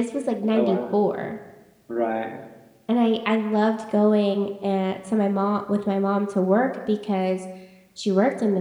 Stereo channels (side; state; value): both; identical; correlation 1.00